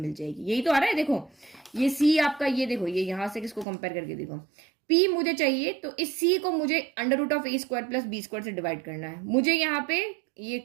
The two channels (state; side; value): drops out; left; at 3.7 s